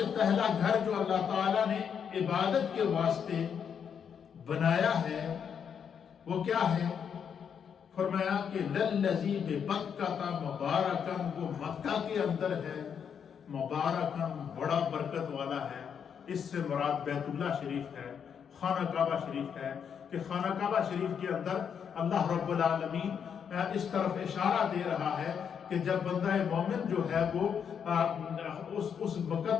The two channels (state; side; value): quieter; right; 7.5 dB